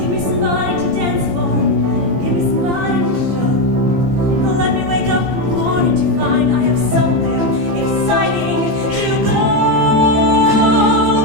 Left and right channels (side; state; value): left; late; 14 ms